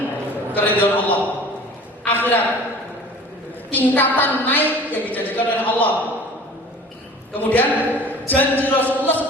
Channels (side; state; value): both; normal; correlation 0.44